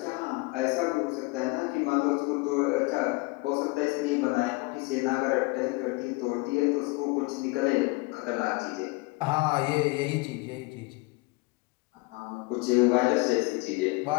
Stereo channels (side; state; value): right; quieter; 24.6 dB